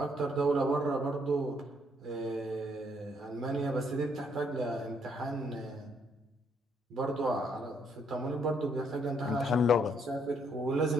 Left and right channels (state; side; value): normal; both; correlation 0.70